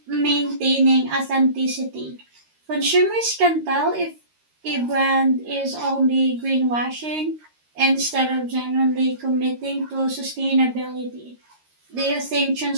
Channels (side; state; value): left; late; 13 ms